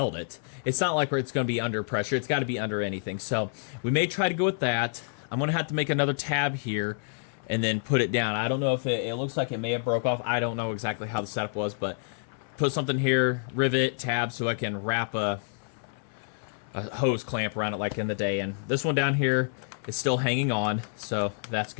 it. It's not like it's going to be under pressure. It's got to be under anything. So we may try to go with that. I'm going to have to make another tab here and then put it down. I don't know if it looks like it may have broke off. I don't know exactly how the setup was, but put something here, rivet, tab, so I can wrap a hose clamp around it like in the day. And this one down here is still hanging on, so that's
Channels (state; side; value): silent; right; 59 dB below the other